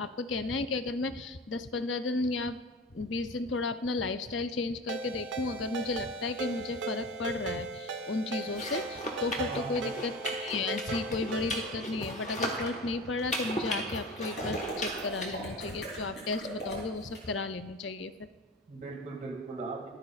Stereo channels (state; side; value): normal; both; correlation 0.33